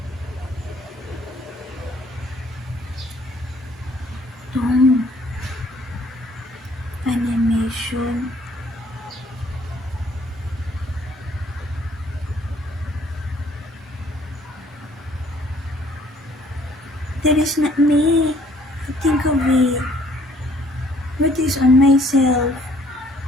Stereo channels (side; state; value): both; normal; correlation 0.60